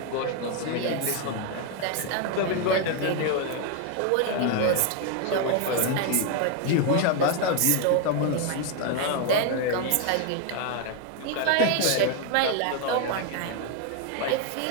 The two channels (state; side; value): different; both; correlation 0.01